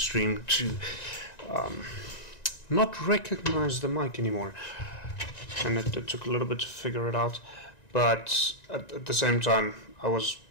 to not recognize the mic anymore, and it took a little bit to figure it out. But at the same time, I was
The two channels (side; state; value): right; late; 1.9 ms